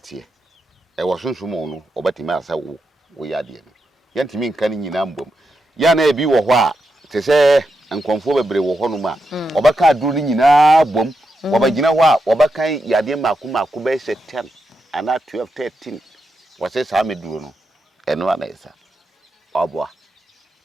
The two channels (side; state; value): both; normal; correlation 0.86